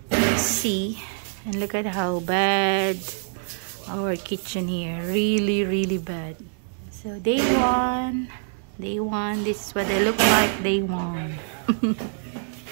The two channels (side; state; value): left; silent; digital silence